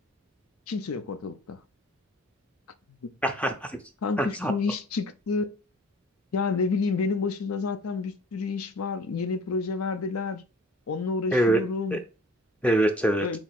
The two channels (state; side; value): normal; both; correlation 0.49